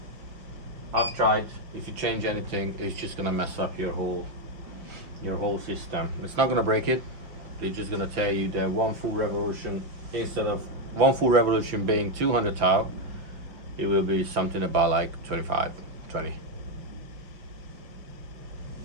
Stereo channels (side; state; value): left; late; 5.8 ms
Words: I've tried. If you change anything, it's just gonna mess up your whole system. It's not gonna break it. They're just gonna tell you that one full revolution, instead of one full revolution being 200 tau, it will be something about like 25, 20.